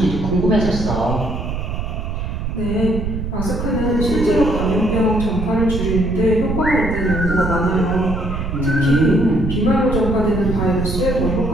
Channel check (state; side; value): noise; right; rumble, 4 dB below the sound